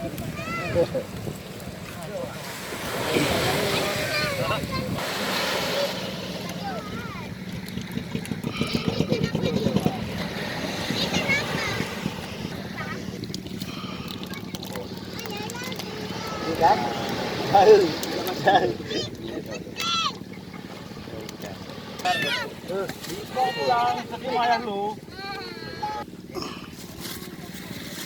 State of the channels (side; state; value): both; identical; correlation 1.00